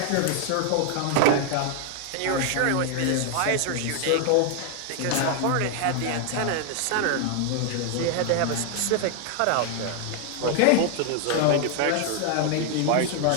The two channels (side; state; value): both; different; correlation 0.00